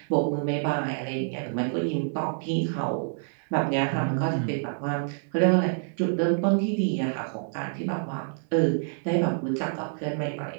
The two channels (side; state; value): left; silent; digital silence